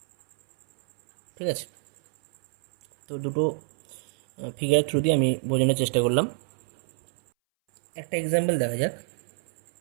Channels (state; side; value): silent; left; 60 dB below the other